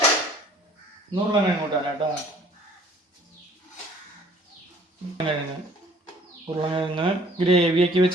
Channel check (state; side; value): normal; both; correlation 0.55